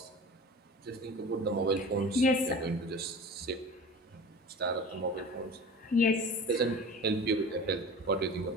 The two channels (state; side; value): normal; both; correlation 0.38